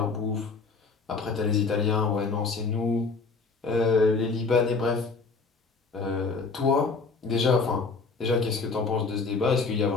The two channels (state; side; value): quieter; right; 4.4 dB